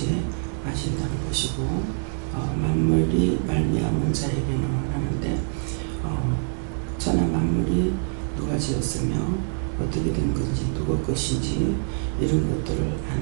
아신다는 것이고 만물이 말미암은 자에게는 하는데 천하 만물이 누가 지었으며 어떻게 된 건지 누구 것인지 이런 것들을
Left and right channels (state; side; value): silent; left; digital silence